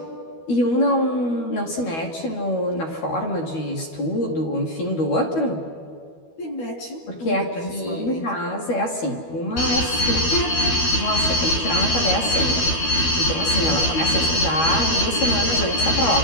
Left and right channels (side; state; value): right; late; 12 ms